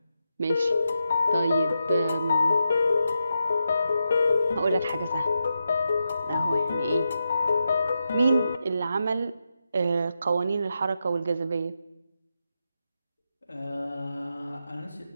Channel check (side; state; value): both; inverted; correlation -0.87